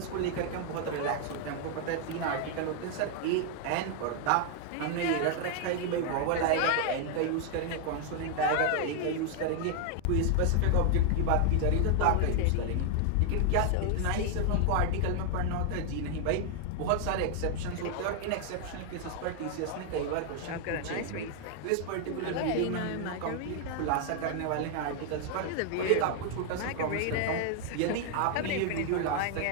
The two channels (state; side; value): different; both; correlation 0.00